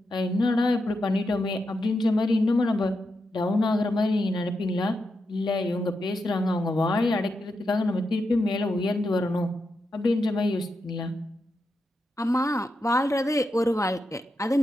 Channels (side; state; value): both; normal; correlation 0.86